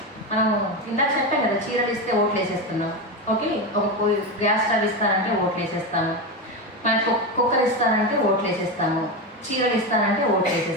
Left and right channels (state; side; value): normal; both; correlation 0.16